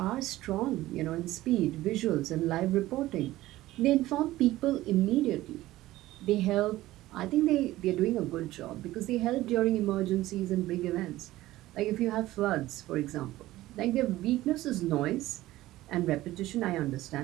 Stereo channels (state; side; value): quieter; left; 16.4 dB